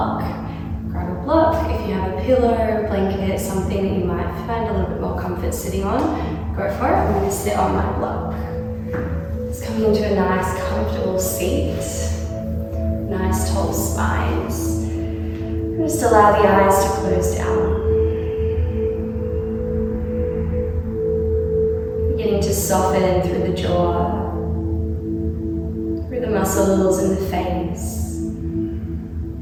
grab a block. If you have a pillow, a blanket, something that you might find a little bit more comfort sitting on, go for it. I'm going to sit on my block. Just coming into a nice comfortable seat, nice tall spines. And just allow the eyes to close down. To soften through the jaw, through the muscles in the face,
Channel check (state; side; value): identical; both; correlation 1.00